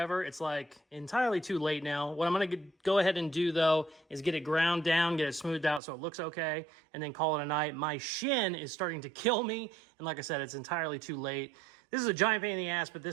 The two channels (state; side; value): drops out; left; at 5.8 s